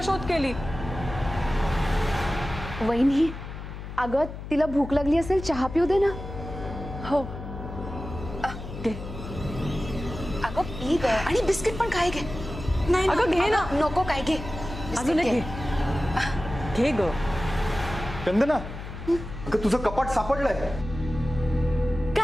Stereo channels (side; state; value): left; noise; hum, 10 dB below the sound